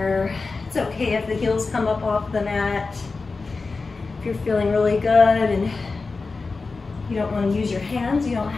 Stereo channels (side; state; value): right; quieter; 4.0 dB